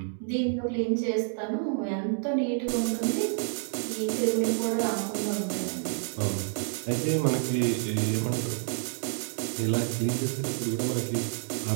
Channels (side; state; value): left; silent; 59 dB below the other